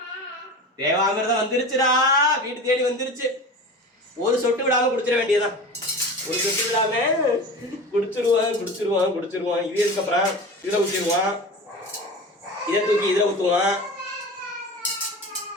தேவாமிர்தம் வந்துருச்சுடா, வீட்டு தேடி வந்துருச்சு. ஒரு சொட்டு விடாம குடிச்சிட வேண்டியதான். ஒரு சொட்டு விடாம குடிச்சிருவான். இது இதுக்கப்புறம் இதில் ஊற்றிடுவான், இதை தூக்கி இதில் ஊற்றுவான்.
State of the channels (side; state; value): both; normal; correlation 0.32